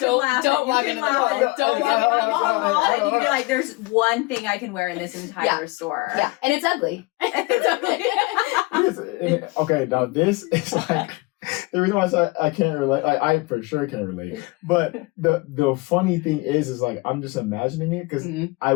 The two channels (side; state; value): right; quieter; 23.9 dB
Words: walk into the mall. Don't walk into the mall. And you can be there's one thing I can wear in this entire store. Yeah. And it's ugly. It's ugly. Okay, now this is the reason why I say I can't relate, I for sure can't relate. But the funny thing is I'm just imagining it because I